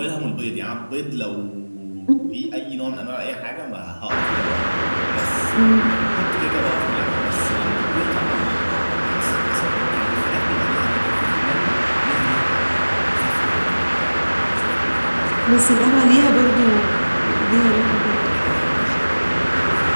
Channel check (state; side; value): inverted; both; correlation -1.00